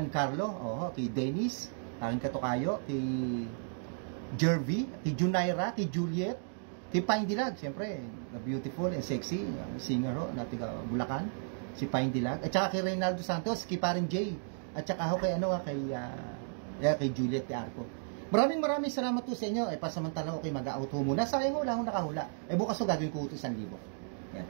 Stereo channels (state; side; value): silent; left; digital silence